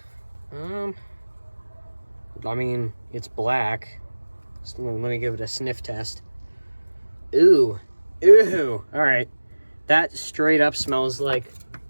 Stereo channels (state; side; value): inverted; both; correlation -1.00